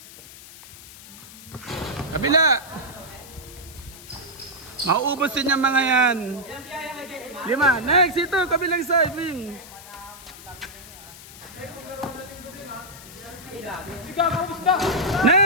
Kabila! Mauubos din yung mga yan. 5. Next! Ito! Kabilang side wing.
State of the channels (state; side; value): noise; left; hiss, 17 dB below the sound